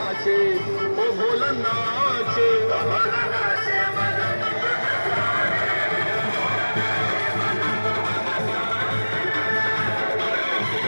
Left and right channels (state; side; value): inverted; both; correlation -1.00